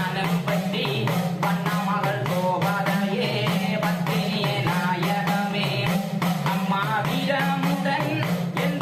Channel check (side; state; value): both; identical; correlation 1.00